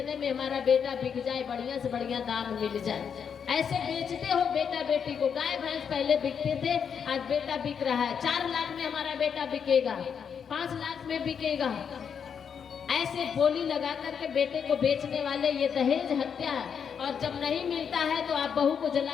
में हमारा बेटा बिक जाए, बढ़िया से बढ़िया दाम मिल जाए। ऐसे बेचते हो बेटा बेटी को। गाय भैंस पहले बिकते थे, आज बेटा बिक रहा है। 4 लाख में हमारा बेटा बिकेगा, 5 लाख में बिकेगा। ऐसे बोली लगा करके बेटे को बेचने वाले ये दहेज हत्या है। और जब नहीं मिलता है तो आप बहू को जला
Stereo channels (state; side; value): quieter; right; 7.2 dB